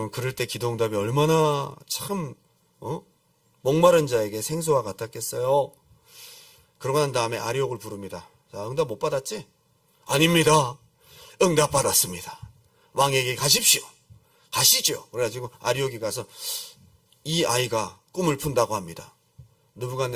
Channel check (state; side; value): identical; both; correlation 1.00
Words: 그럴 때 기도 응답이 얼마나 참 목마른 자에게 생수와 같았겠어요. 그러고 난 다음에 아리옥을 부릅니다. 자, 응답 못 받았지? 아닙니다. 응답 받았습니다. 왕에게 가십시오. 가시죠. 그래가지고 아리옥이 가서 이 아이가 꿈을 푼다고 합니다.